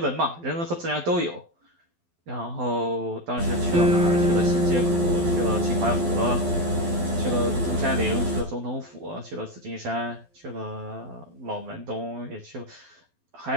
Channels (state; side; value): late; left; 12 ms